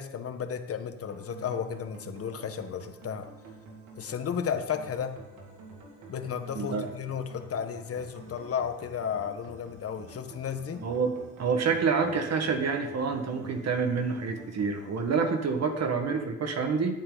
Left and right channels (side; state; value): both; normal; correlation 0.17